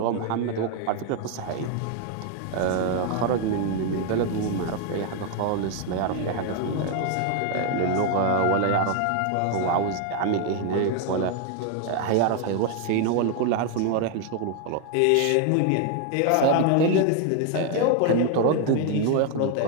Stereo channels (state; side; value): different; both; correlation 0.01